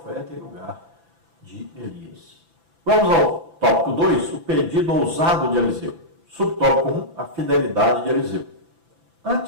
em lugar de Elias. Vamos ao tópico 2, o pedido ousado de Eliseu. Subtópico 1, a fidelidade de Eliseu.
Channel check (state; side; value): late; left; 6.0 ms